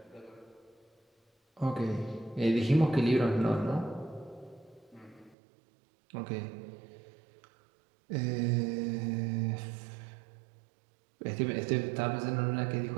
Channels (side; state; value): left; drops out; at 5.4 s